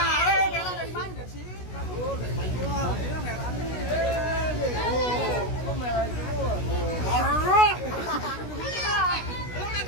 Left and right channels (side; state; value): right; late; 16 ms